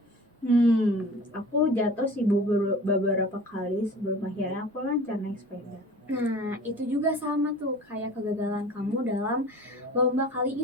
Aku jatuh sih Bu beberapa kali sebelum akhirnya aku lancar naik sepeda. Nah, itu juga sama tuh kayak kegagalan kamu dalam lomba kali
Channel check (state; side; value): normal; both; correlation 0.42